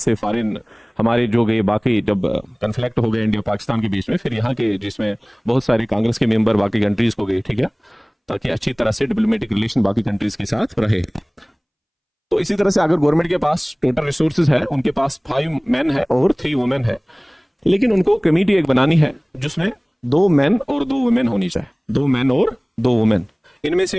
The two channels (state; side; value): identical; both; correlation 1.00